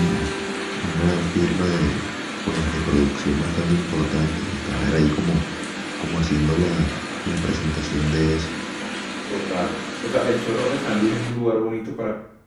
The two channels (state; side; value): identical; both; correlation 1.00